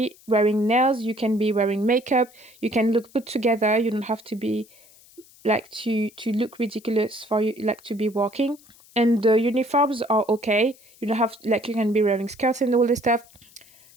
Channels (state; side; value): noise; left; hiss, 26 dB below the sound